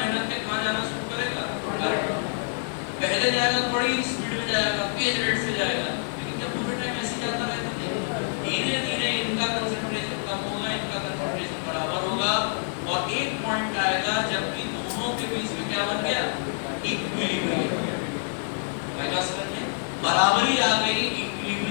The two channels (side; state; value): right; silent; 60 dB below the other